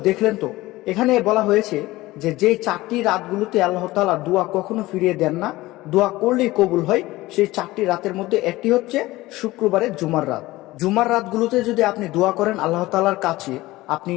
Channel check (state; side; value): quieter; right; 18.6 dB